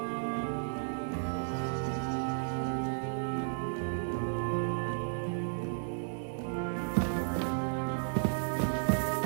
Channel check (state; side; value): silent; left; digital silence